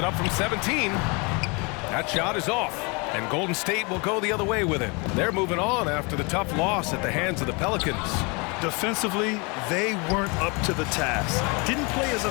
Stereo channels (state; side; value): quieter; right; 30.2 dB